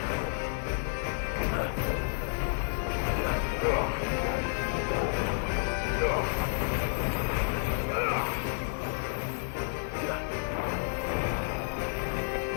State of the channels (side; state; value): right; silent; 57 dB below the other